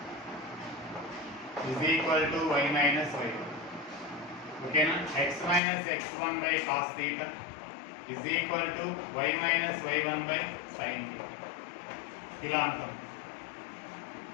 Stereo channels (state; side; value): drops out; right; at 5.6 s